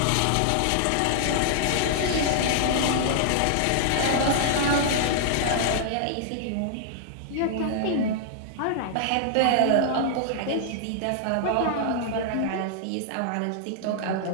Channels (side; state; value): both; different; correlation -0.01